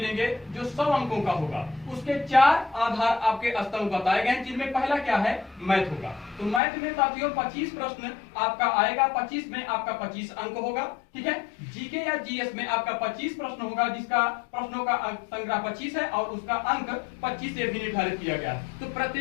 जो 100 अंकों का होगा। उसके 4 आधार आपके स्तंभ बताए गए हैं, जिनमें पहला क्या है, मैथ होगा। तो मैथ में साथियों 25 प्रश्न आपका आएगा, 25 में आपका 25 अंक होगा। ठीक है, जीके या जीएस में आपका 25 प्रश्न होगा, जिसका प्रश्नों का संग्रह 25 है और उसका अंक 25 से भी निर्धारित किया गया है। तो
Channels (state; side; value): drops out; right; at 6.6 s